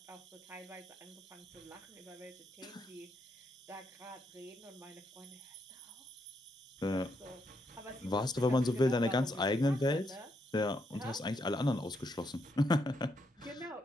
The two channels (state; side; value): normal; both; correlation 0.78